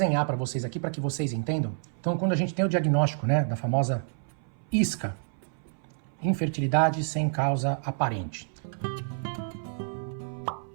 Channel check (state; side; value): silent; left; 58 dB below the other